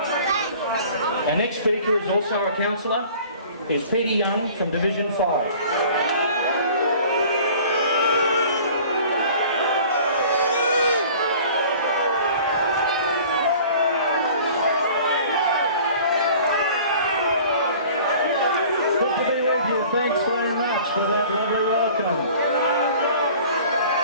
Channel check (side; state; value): both; inverted; correlation -0.47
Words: Our next speaker is also a councillor. He's Peter Young from Division 5. Thanks very much for that lovely welcome.